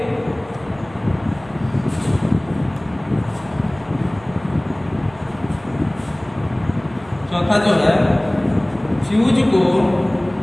चौथा जो है, फ्यूज को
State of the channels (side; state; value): right; noise; hum, 24 dB below the sound